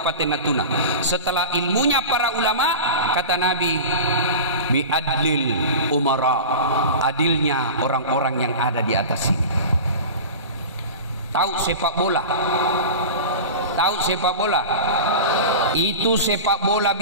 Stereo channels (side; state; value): both; inverted; correlation -0.31